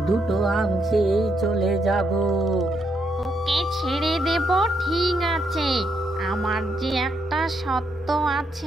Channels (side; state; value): both; normal; correlation 0.77